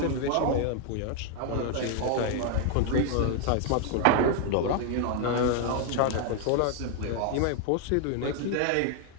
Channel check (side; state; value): both; different; correlation 0.00